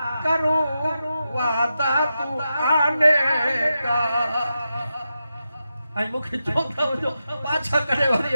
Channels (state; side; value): inverted; both; correlation -0.89